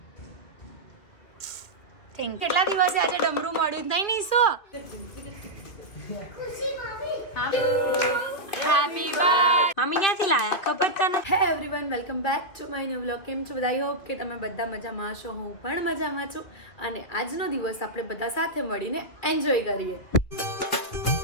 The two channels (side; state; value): right; late; 2.6 ms